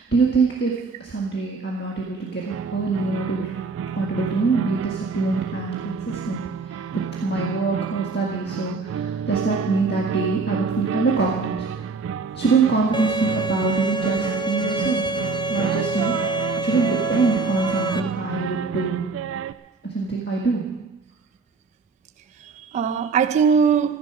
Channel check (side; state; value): left; quieter; 4.2 dB